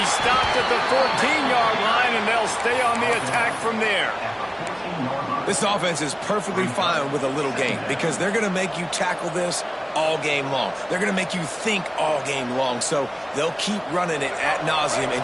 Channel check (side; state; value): both; identical; correlation 1.00